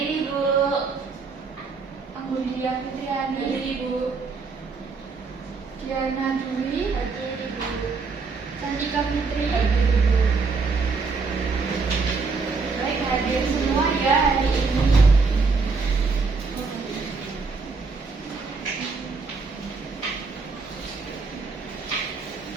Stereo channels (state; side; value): quieter; left; 4.5 dB